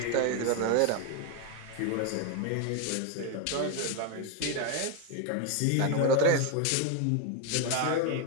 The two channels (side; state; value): both; different; correlation 0.01